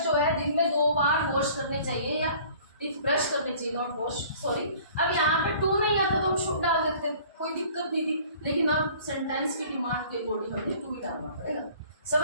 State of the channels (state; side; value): inverted; both; correlation -0.51